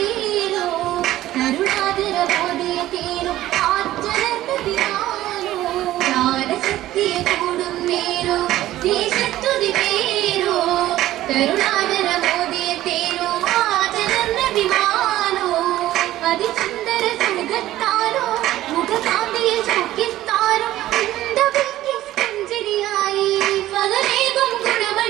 കരുണാകര മോദിയ തേരോ ആറ്റരന്തതിയാനോ ജ്ഞാനശക്തിയ കൂടും നേരോ ദേശത്തുതി പേരോ കരുണാകര മോദിയ തേരോ ആറ്റരന്തതിമാനോ അതിസുന്ദര സുഖത്താരോ മുഖകാന്തിയിൽ ചുക്കിത്താരോ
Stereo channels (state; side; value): quieter; left; 14.6 dB